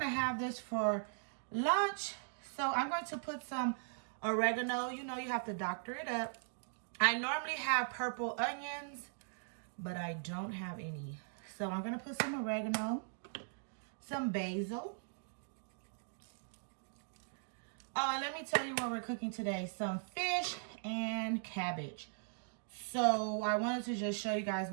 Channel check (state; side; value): silent; left; digital silence